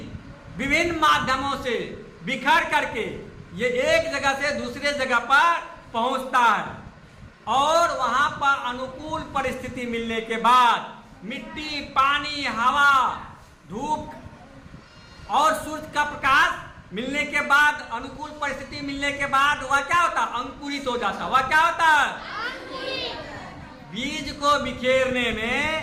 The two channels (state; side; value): identical; both; correlation 1.00